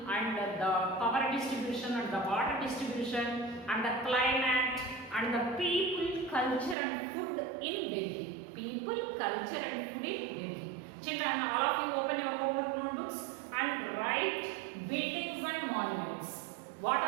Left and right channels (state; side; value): drops out; left; at 6.8 s